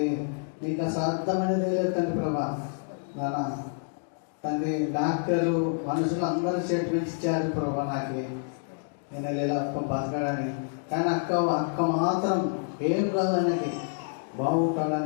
నీకు అసాధ్యమైనది లేదు తండ్రి ప్రభా. తండ్రి డాక్టర్లు మనుషులు అందరూ స్టేట్మెంట్స్ ఇచ్చారు ప్రభా నాకు నేను ఇలా బతకడానికి. కానీ అక్క మాత్రం ఏం కాదు అనేది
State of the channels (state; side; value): silent; right; digital silence